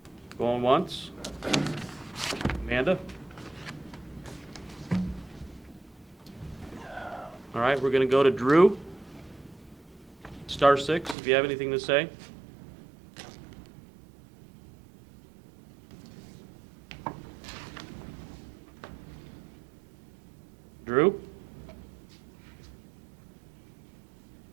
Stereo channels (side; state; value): left; drops out; at 11.2 s